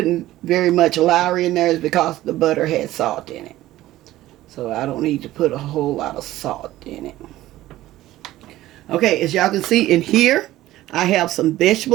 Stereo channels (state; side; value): quieter; left; 15.4 dB